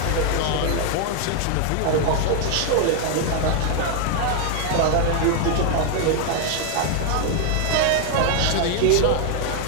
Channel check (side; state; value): both; different; correlation 0.00